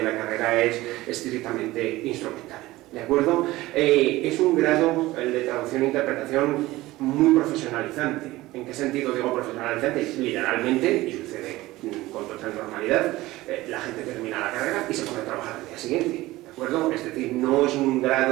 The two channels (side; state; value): left; quieter; 18.2 dB